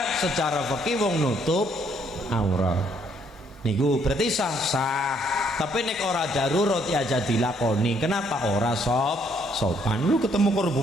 Secara fikih wong nutup aurat. Niku berarti sah. Tapi nek ora darurat ya aja dilakoni. Kenapa? Ora sopan. Lu ketemu karo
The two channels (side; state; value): both; normal; correlation 0.68